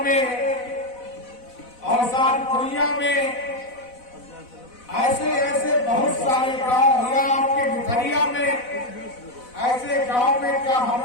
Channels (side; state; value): right; late; 4.0 ms